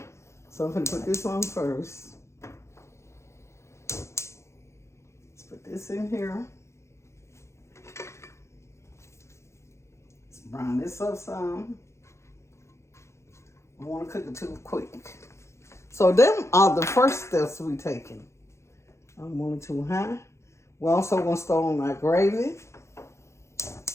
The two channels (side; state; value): right; late; 0.13 ms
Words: So I'm gonna put this on first. Let's put this in here. Let's brown this up some. I don't want to cook it too quick. So them are the first steps we taking. I'm going too high. We're also gonna start on my gravy.